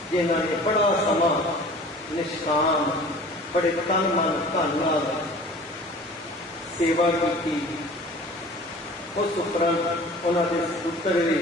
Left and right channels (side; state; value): both; normal; correlation 0.44